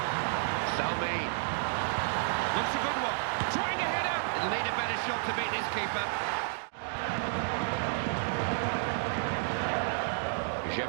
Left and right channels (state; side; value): silent; left; digital silence